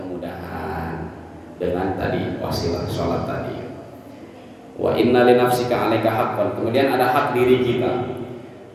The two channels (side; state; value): both; identical; correlation 1.00